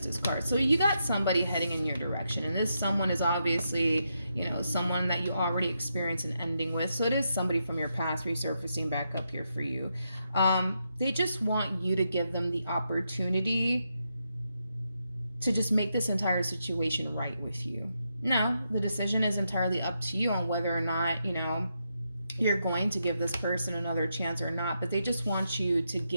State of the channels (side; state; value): both; inverted; correlation -0.83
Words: card. So you got somebody heading in your direction, and this someone is obviously, you know, someone that you already experienced an ending with. So it is somebody from your past resurfacing back up here for you. They just want you to give them the opportunity to just make this entire situation right with you. Now, the decision is entirely up to you on whether or not, you know, you're going to give this person another chance or not, but they just want you to